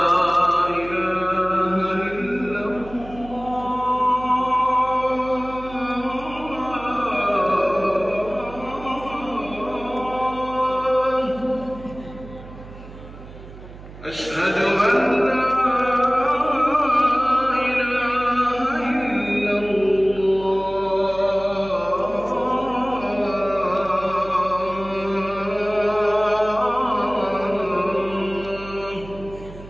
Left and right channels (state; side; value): noise; right; hum, 16 dB below the sound